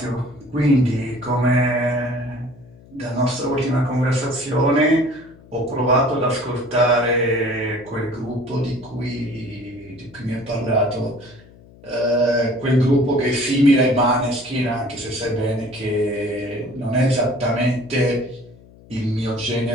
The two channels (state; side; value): noise; left; hum, 24 dB below the sound